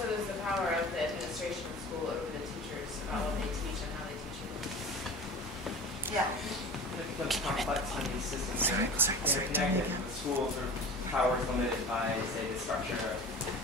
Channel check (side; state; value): both; normal; correlation 0.37